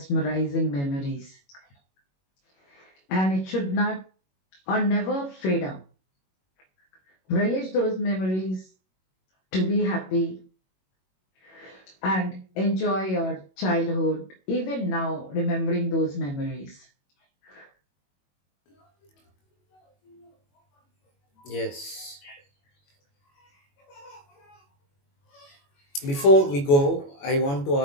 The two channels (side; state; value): right; late; 21 ms